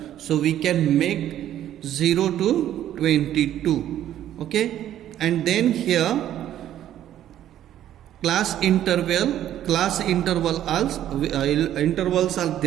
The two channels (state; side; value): quieter; left; 11.7 dB